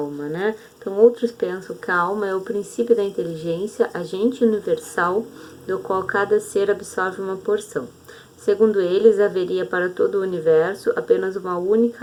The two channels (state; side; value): identical; both; correlation 1.00